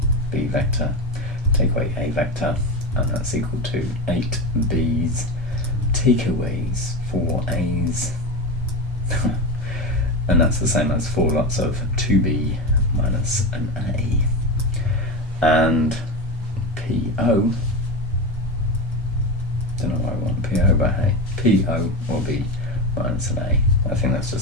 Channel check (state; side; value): normal; both; correlation 0.20